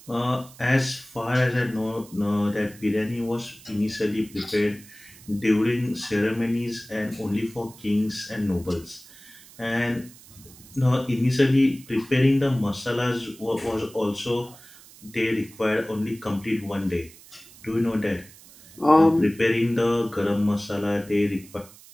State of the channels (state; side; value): noise; right; hiss, 22 dB below the sound